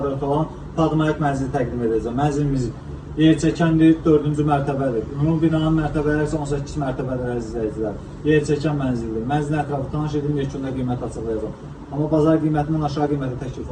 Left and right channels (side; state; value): both; identical; correlation 1.00